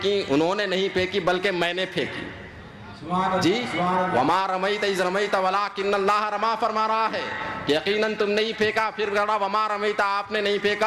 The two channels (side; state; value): both; identical; correlation 1.00